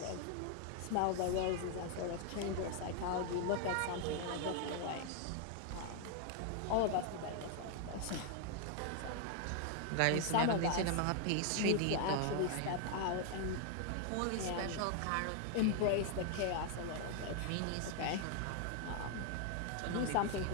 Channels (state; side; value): different; both; correlation 0.00